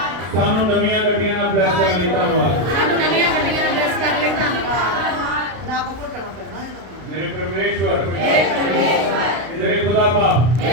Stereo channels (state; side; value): late; left; 33 ms